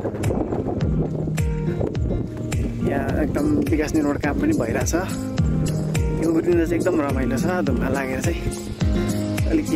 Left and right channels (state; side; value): identical; both; correlation 1.00